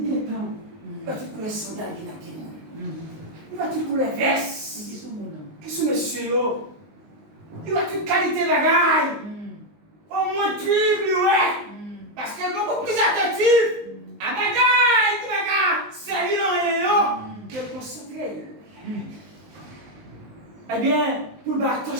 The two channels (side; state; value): left; late; 19 ms